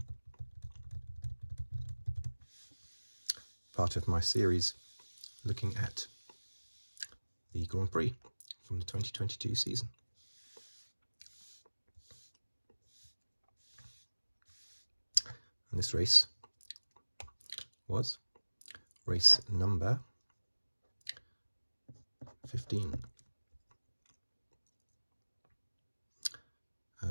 part of my series looking at the Grand Prix from the 2022 season. And this race was race number 15.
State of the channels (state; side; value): inverted; both; correlation -1.00